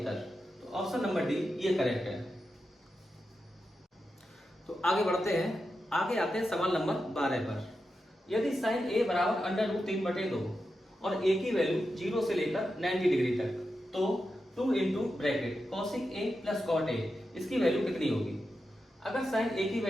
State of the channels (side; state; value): both; normal; correlation 0.89